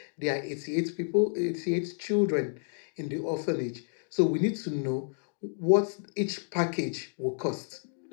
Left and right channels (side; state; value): right; silent; digital silence